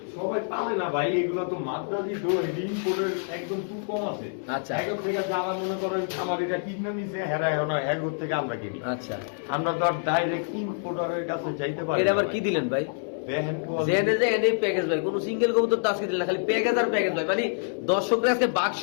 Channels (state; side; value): silent; right; digital silence